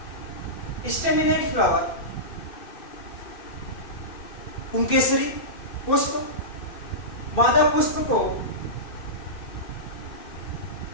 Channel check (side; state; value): right; late; 2.6 ms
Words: स्टेमिनेट फ्लावर, पुंकेसरी पुष्प, मादा पुष्प को